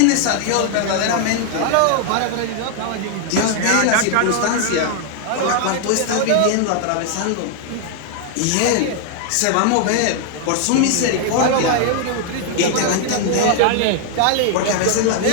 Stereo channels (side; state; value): both; different; correlation 0.00